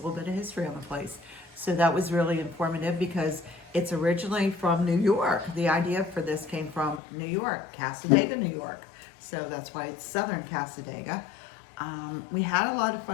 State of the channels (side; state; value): right; drops out; at 7.0 s